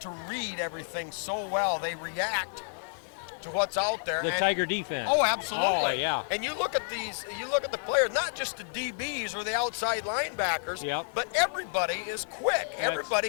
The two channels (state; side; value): silent; right; digital silence